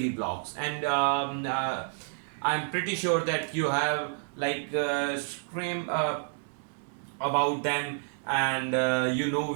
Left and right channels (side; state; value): left; silent; digital silence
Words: blocks, and I'm pretty sure that you have scream about them, and you know